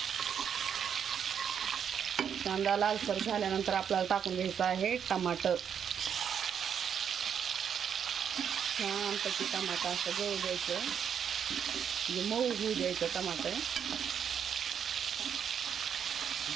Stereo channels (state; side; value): quieter; left; 8.0 dB